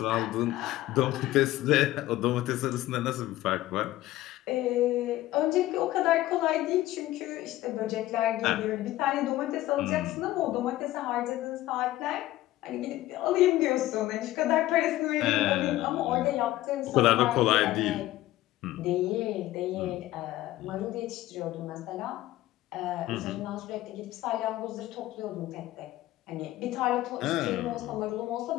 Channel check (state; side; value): quieter; right; 15.8 dB